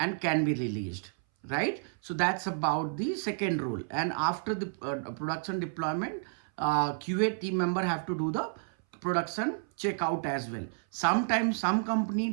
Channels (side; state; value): left; silent; 57 dB below the other